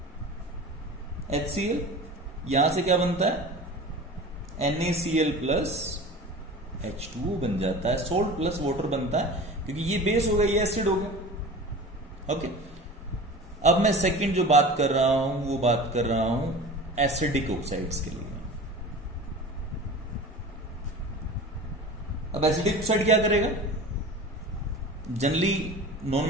HCl, यहां से क्या बनता है, NaCl प्लस H2O बन जाता है, सोल्ट प्लस वाटर बनता है, क्योंकि ये बेस हो गया, ये एसिड हो गया। ओके, अब मैं सेकंड जो बात कर रहा हूं वो बात कर रहा हूं एसिडिक ऑक्साइड्स के लिए। अब एसिडिक ऑक्साइड क्या करेगा, जनरली नॉन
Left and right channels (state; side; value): normal; both; correlation 0.36